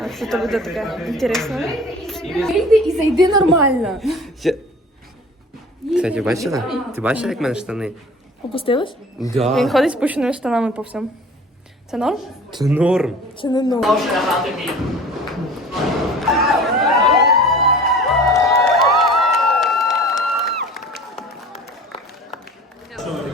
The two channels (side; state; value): both; normal; correlation 0.44